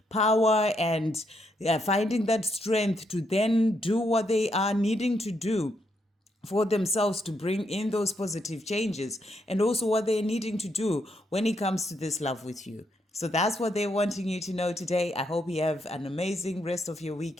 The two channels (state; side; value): normal; both; correlation 0.77